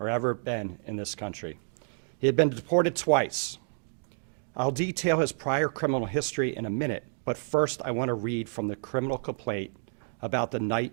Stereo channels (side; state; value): left; silent; digital silence